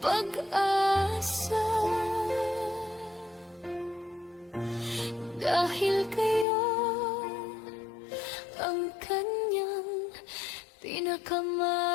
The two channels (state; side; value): drops out; right; at 6.5 s